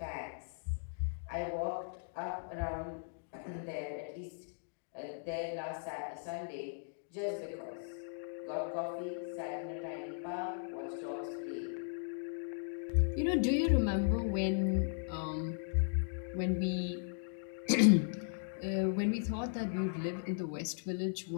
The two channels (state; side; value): silent; right; digital silence